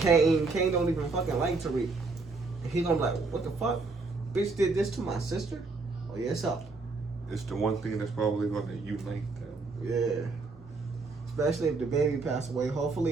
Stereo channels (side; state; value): left; quieter; 3.8 dB